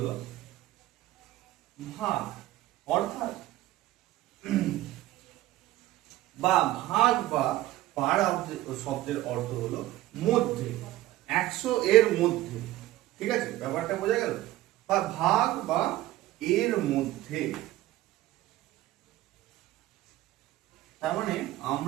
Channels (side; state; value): left; quieter; 15.7 dB